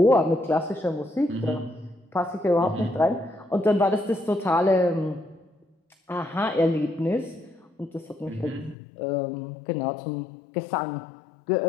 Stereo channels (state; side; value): drops out; right; at 8.8 s